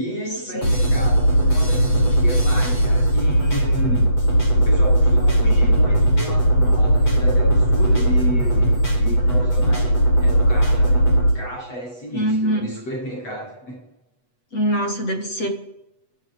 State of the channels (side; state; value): right; late; 8.1 ms